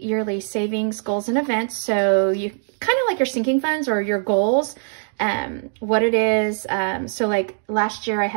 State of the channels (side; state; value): left; silent; digital silence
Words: savings, goals, and events. So you kind of like your sinking funds or your goals. What it is, so like last year I